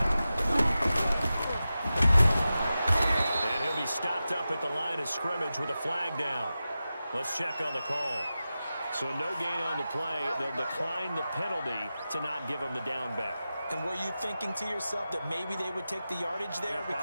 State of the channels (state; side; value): inverted; both; correlation -0.93